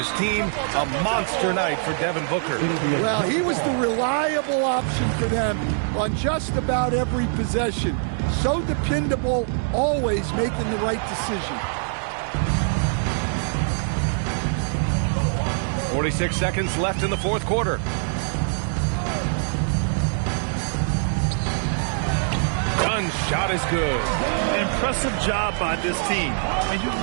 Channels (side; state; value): left; silent; digital silence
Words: team. A monster night for Devin Booker. Well, he was the reliable option for them on just about every possession. So dependable, always making the right decision. 46 seconds left in the fourth quarter. Dunn's shot is good. Impressive job by this team. And you